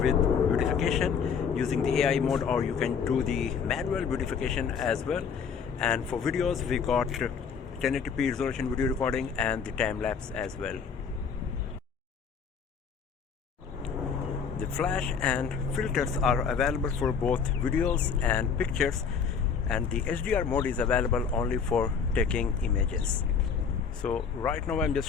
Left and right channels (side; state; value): right; quieter; 6.4 dB